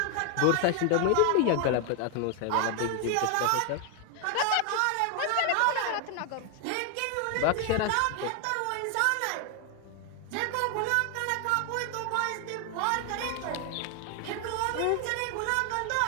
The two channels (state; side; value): different; both; correlation 0.00